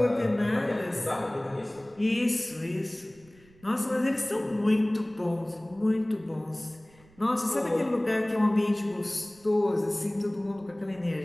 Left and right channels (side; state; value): right; noise; rumble, 27 dB below the sound